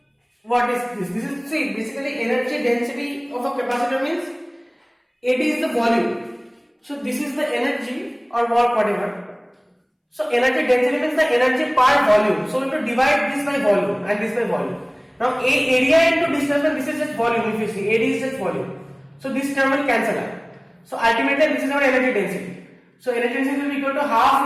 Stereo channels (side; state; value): both; identical; correlation 1.00